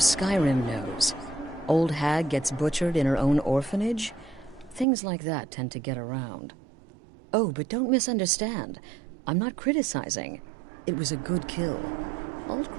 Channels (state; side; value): drops out; left; at 4.9 s